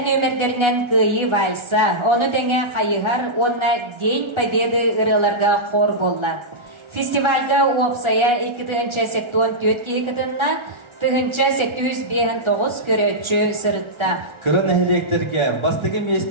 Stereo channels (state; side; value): late; left; 1.4 ms